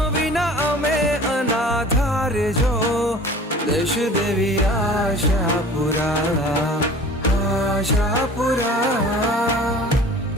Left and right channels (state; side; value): normal; both; correlation 0.44